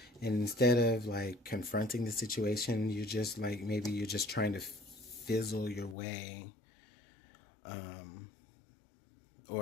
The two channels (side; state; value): right; drops out; at 6.0 s